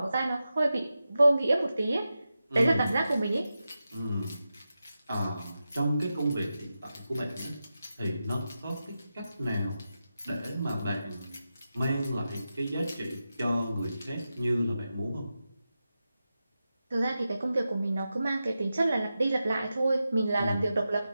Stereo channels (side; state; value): both; inverted; correlation -0.91